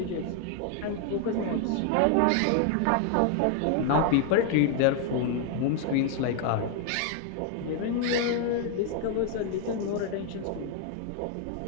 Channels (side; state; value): both; different; correlation 0.00